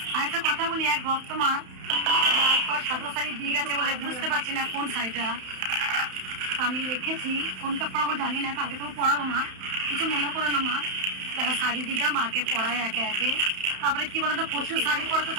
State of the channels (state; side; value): late; left; 31 ms